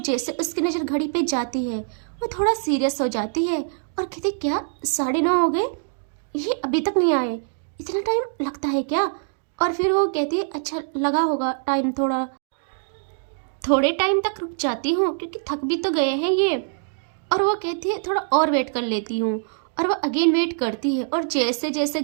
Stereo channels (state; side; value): silent; left; digital silence